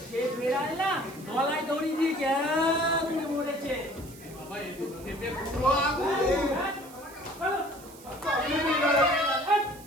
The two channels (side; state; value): right; noise; hiss, 20 dB below the sound